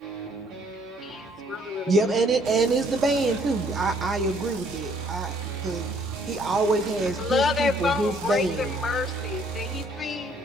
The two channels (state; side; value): normal; both; correlation 0.63